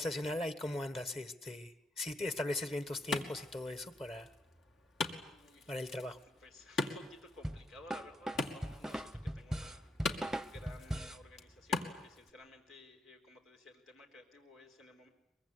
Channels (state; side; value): normal; both; correlation 0.77